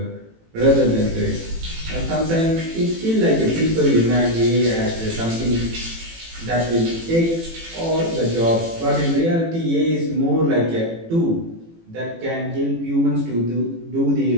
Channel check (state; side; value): late; left; 18 ms